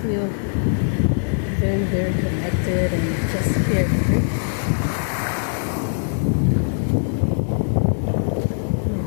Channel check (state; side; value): silent; right; digital silence